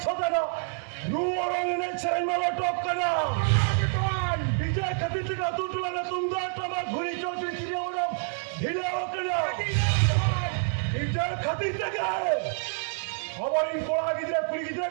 सोता ना नू और ने चरण वाला टॉप करना डीजे खतरी तक तू टुला ना तुम दो टमा घुरी चौचरी चिड़िया वाला ढीले हो करना डीजे खतरी तक हमारी कोड़ा गिद्रे पुरी गिद्रे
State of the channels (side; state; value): left; silent; 60 dB below the other